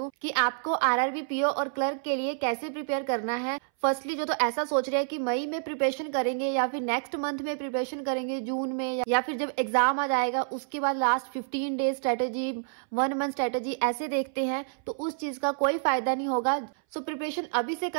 कि आपको आरआरबी, पीओ और क्लर्क के लिए कैसे प्रिपेयर करना है। फर्स्टली जो तो ऐसा सोच रहे हैं कि मई में प्रिपरेशन करेंगे या फिर नेक्स्ट मंथ में प्रिपरेशन करेंगे, जून में, या फिर जब एग्जाम आ जाएगा उसके बाद last 15 days strategy, 1 month strategy ऐसे देखते हैं, तो उस चीज का कोई फायदा नहीं होगा। सो प्रिपरेशन अभी से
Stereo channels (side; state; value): left; silent; 59 dB below the other